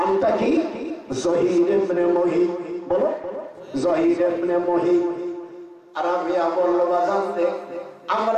কি? জহির ইবনে মুহিব। বলো, জহির ইবনে মুহিব। রাবিয়া বলল, বাজান রে,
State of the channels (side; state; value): both; identical; correlation 1.00